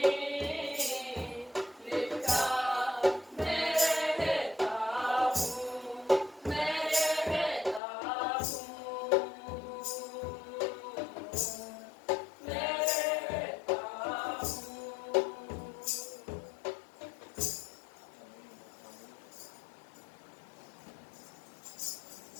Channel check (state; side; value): drops out; right; at 7.8 s